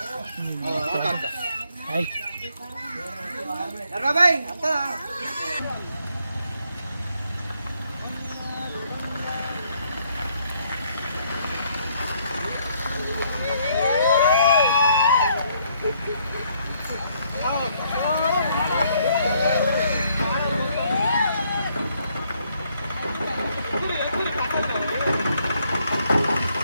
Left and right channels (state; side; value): inverted; both; correlation -0.70